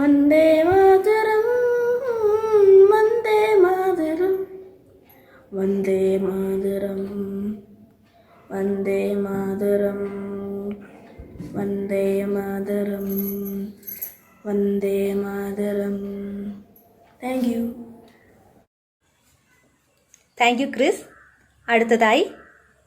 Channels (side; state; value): both; identical; correlation 1.00